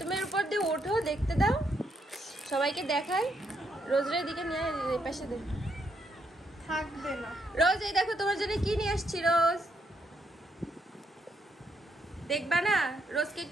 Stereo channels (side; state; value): both; normal; correlation 0.76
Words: এর উপর দিয়ে ওঠো, দেখতে দাও, সবাইকে দেখাই। রোজের দিকে নিয়ে এই পাশে দে। থাকবে না। রোজ এই দেখো তোমার জন্য কি নিয়ে আসছি। রোজ দেখবা না? রোজকে